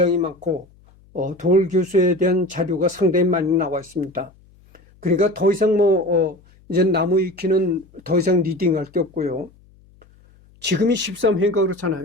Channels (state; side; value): noise; left; hum, 29 dB below the sound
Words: 많고, 도올 교수에 대한 자료가 상당히 많이 나와 있습니다. 그러니까 더 이상 이제 나무 위키는 더 이상 리딩할 게 없고요. 지금이 13회인가